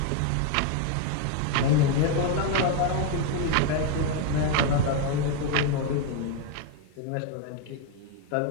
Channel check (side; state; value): both; different; correlation 0.01